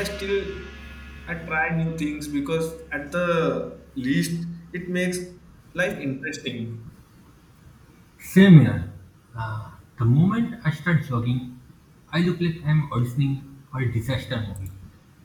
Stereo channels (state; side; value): identical; both; correlation 1.00